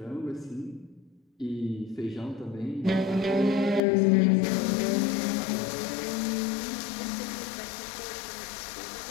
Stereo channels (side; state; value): right; drops out; at 3.8 s